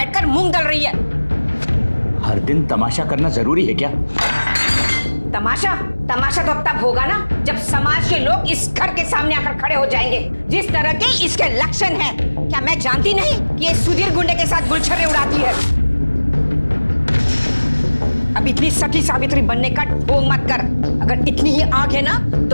मूंग दल रही है। हर दिन तमाशा करना जरूरी है क्या? तमाशा तो तब होगा ना जब समाज के लोग इस घर के सामने आकर खड़े हो जाएंगे। जिस तरह के इसके लक्षण हैं, क्या मैं जानती नहीं कि ये सुधीर गुंडे के साथ गुलछर्रे उड़ाती है? अब इतनी सती सावित्री बनने का ढोंग मत कर। अगर इतनी ही आग है ना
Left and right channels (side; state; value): both; inverted; correlation -1.00